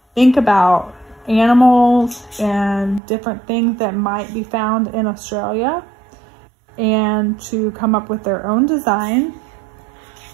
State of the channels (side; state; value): left; drops out; at 3.0 s